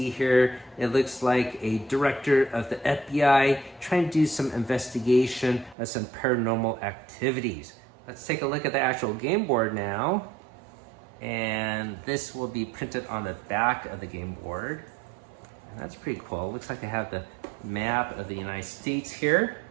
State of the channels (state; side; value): drops out; left; at 5.8 s